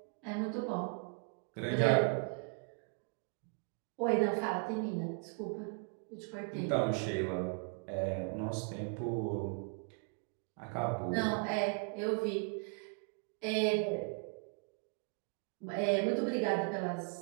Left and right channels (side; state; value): left; quieter; 38.5 dB